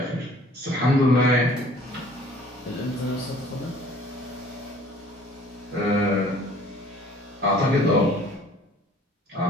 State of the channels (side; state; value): both; normal; correlation 0.53